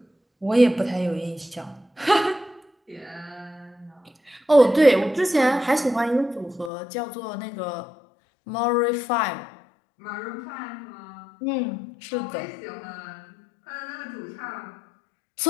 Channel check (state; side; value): drops out; right; at 6.7 s